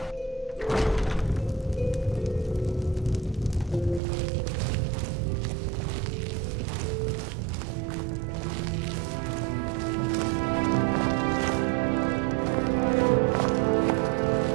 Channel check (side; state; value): left; drops out; at 4.0 s